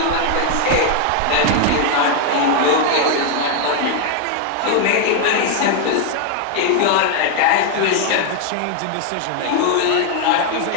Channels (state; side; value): different; both; correlation 0.00